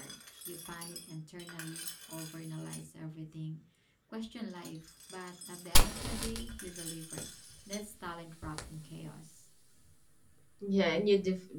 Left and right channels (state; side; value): identical; both; correlation 1.00